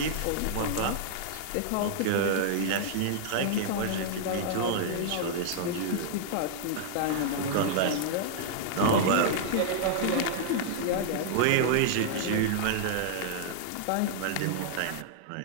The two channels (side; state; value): both; different; correlation -0.01